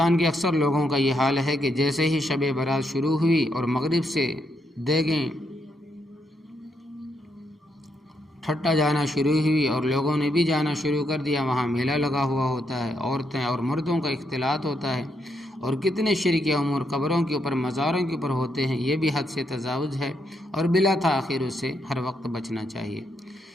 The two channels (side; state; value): both; normal; correlation 0.78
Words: کے اکثر لوگوں کا یہ حال ہے کہ جیسے ہی شب برات شروع ہوئی اور مغرب سے دیگیں ٹھٹا جانا شروع ہوئی اور لوگوں نے بھی جانا شروع کر دیا، وہاں میلہ لگا ہوا ہوتا ہے، عورتیں اور مردوں کا اختلاط ہوتا ہے، اور کتنے شرک امور قبروں کے اوپر مزاروں کے اوپر ہوتے ہیں، یہ بھی حد سے تجاوز ہے اور بلا تاخیر اس سے ہر وقت بچنا چاہیے۔